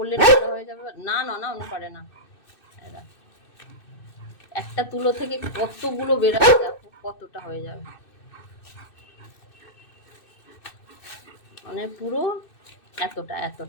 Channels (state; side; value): late; right; 2.6 ms